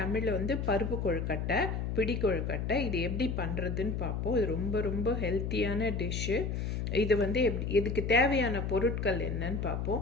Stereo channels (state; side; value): noise; left; hum, 2 dB below the sound